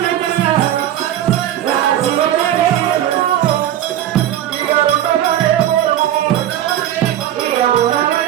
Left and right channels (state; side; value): quieter; left; 11.9 dB